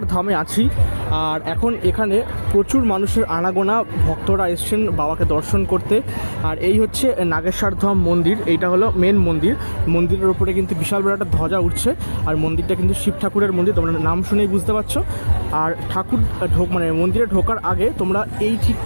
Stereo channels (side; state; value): both; inverted; correlation -1.00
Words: ধামে আছি। আর এখন এখানে প্রচুর মানুষের আনাগোনা, ভক্তরা এসছেন বাবাকে দর্শন করতে। আর এই হচ্ছে নাগেশ্বর ধাম মন্দির, এইটা হলো মেন মন্দির। মন্দিরের ওপরে কিন্তু বিশাল বড় একটা ধ্বজা উঠছে। আর মন্দিরটা কিন্তু শিব ঠাকুরের মন্দির, তোমরা নাম শুনেই বুঝতে পারছো। আর ঠাকুর মন্দিরে ঢোকার আগে তোমরা এই ঠিক